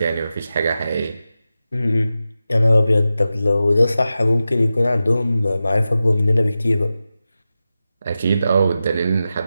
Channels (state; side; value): inverted; both; correlation -0.93